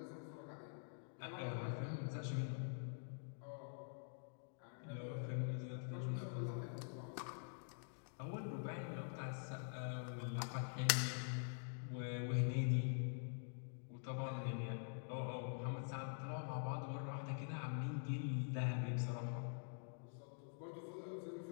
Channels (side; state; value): right; silent; digital silence